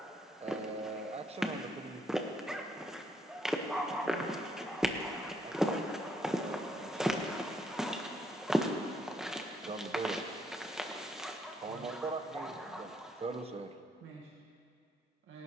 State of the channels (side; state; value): both; normal; correlation 0.71